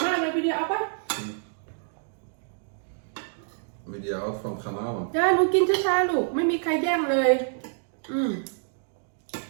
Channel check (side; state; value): left; silent; 60 dB below the other